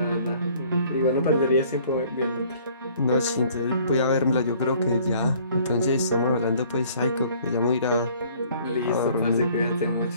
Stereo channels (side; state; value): both; inverted; correlation -0.56